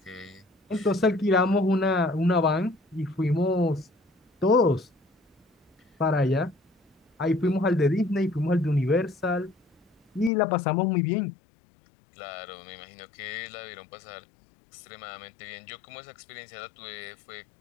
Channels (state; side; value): drops out; right; at 10.3 s